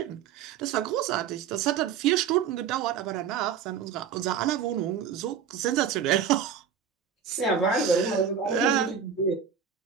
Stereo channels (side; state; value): left; quieter; 7.5 dB